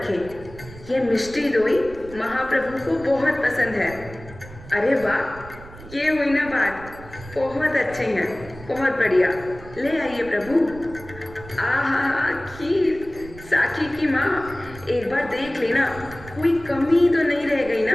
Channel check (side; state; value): right; noise; rumble, 17 dB below the sound